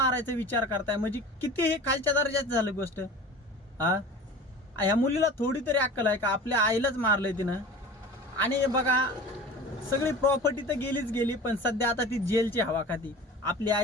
विचार करताय, म्हणजे किती हे खालच्या दर्जाचं झालं गोष्ट. ह्या मुलीला थोडी तरी अक्कल आहे का? आपल्या आईलाच मारलंय तिनं. आणि बघा, सगळी प्रॉपर्टी तर गेलीच गेली, पण सध्या आता ती जेलची हवा खाती. आपली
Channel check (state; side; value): normal; both; correlation 0.38